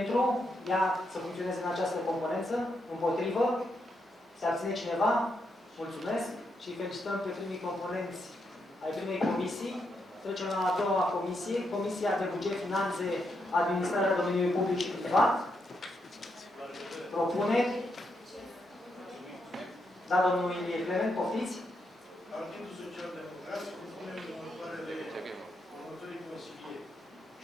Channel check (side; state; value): both; normal; correlation 0.81